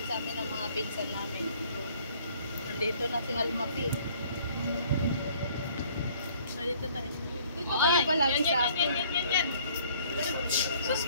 sa amin ng mga pinsan namin. Nandito na si Almapi. Nandito tayo. Dito kayo palagi sa akin. Yan. Sus,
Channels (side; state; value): both; inverted; correlation -0.57